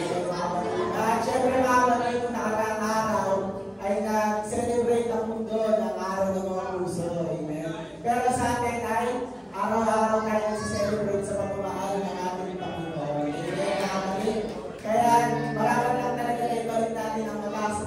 At syempre mga kapatid, kung nakaraang araw ay nag-celebrate ang mundo ng araw ng mga puso. Amen. Pero sa atin ay araw-araw tayo nag-celebrate sa pamamahal ng ating Panginoon. Amen mga kapatid. Kaya maraming lang talaga na ibalik natin ang mataas sa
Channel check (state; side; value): identical; both; correlation 1.00